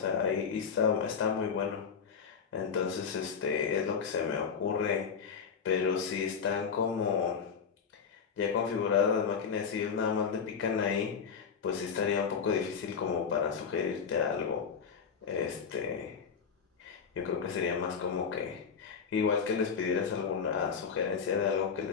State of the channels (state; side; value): quieter; right; 6.3 dB